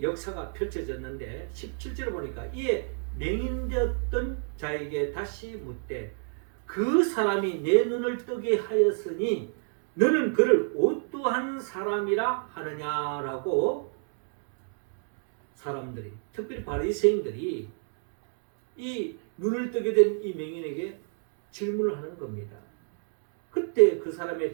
역사가 펼쳐졌는데 17절을 보니까 이에 맹인되었던 자에게 다시 묻되 그 사람이 내 눈을 뜨게 하였으니 너는 그를 어떠한 사람이라 하느냐라고 사람들이, 특별히 바리새인들이 이 눈을 뜨게 된 이 맹인에게 질문을 하는 겁니다. 그때 그 사람의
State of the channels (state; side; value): silent; left; 55 dB below the other